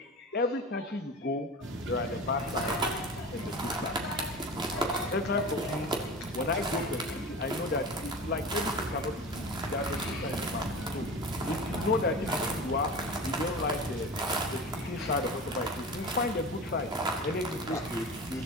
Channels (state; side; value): normal; both; correlation 0.32